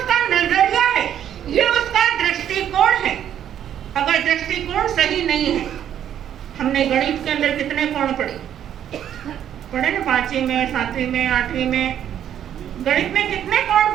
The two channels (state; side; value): quieter; left; 10.1 dB